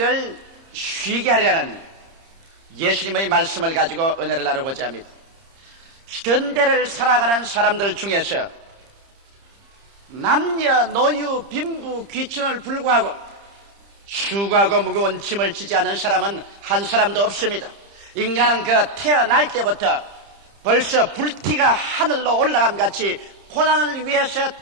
쉬게 하리라는 예수님의 말씀을 가지고 은혜를 나누고자 합니다. 현대를 살아가는 사람들 중에서 남녀, 노유, 빈부, 귀천을 불구하고 수고하고 무거운 짐을 지지 않은 사람은 한 사람도 없습니다. 인간은 그 태어날 때부터 벌써 불티가 하늘로 올라감 같이 고난을 위해서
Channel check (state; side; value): late; left; 30 ms